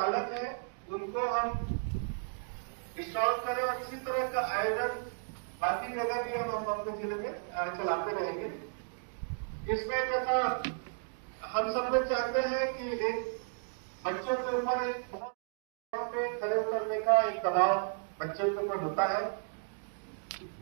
हैं, उनको हम स्ट्रांग करें, और इसी तरह का आयोजन बाकी जगह भी हम अपने जिले में चलाते रहेंगे। इसमें जैसा हम सब लोग चाहते हैं कि एक बच्चों के ऊपर एक बहुत पे खड़े उतरने का एक दबाव बच्चों के ऊपर होता है,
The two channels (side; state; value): left; silent; digital silence